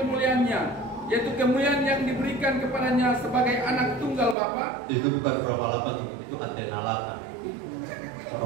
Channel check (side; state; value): left; drops out; at 4.4 s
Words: yaitu kemuliaan yang diberikan kepadanya sebagai anak tunggal Bapa. Itu bukan Roma 8, itu Antena 8.